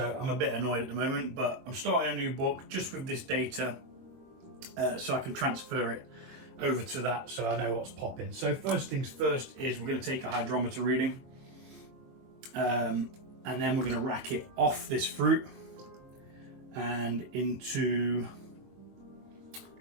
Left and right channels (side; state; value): left; late; 22 ms